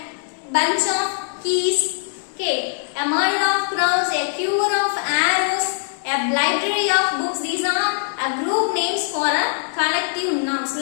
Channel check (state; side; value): silent; right; digital silence